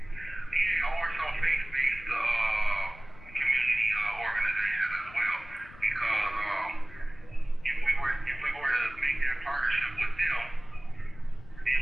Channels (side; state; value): left; noise; rumble, 19 dB below the sound